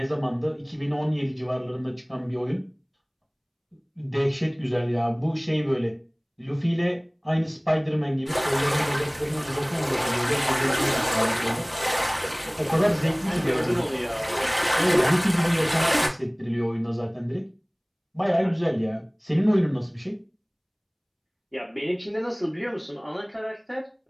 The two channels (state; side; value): identical; both; correlation 1.00